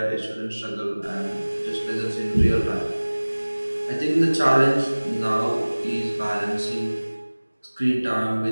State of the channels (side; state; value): both; inverted; correlation -1.00